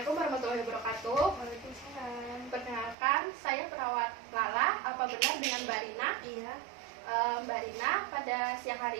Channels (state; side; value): drops out; left; at 3.0 s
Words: warahmatullahi wabarakatuh. Waalaikumsalam. Perkenalkan, saya perawat Lala. Apa benar dengan Mbak Rina? Iya. Mbak Rina, pada siang